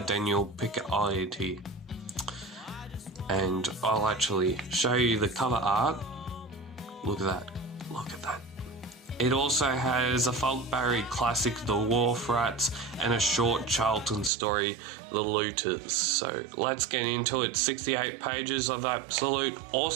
Daniel Picciotti. And I'll actually show you the cover art. Look at that. Look at that. It also has a Falk Barry classic, The Wharf Rats, and a short Charlton story, The Looters. So let's get into it. 68 pages of absolute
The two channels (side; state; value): left; drops out; at 14.3 s